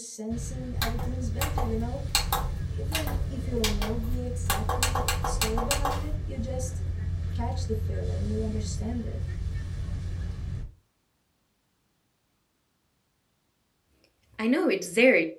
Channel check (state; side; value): identical; both; correlation 1.00